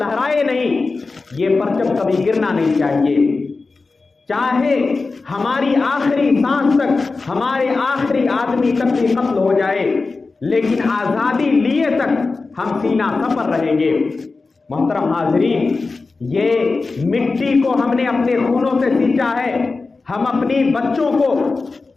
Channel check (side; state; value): right; quieter; 3.9 dB